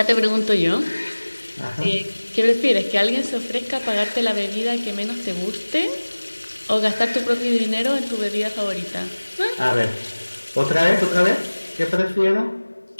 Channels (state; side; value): inverted; both; correlation -1.00